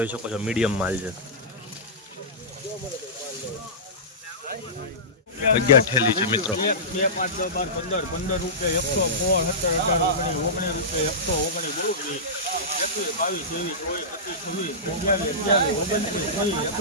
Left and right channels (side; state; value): both; normal; correlation -0.18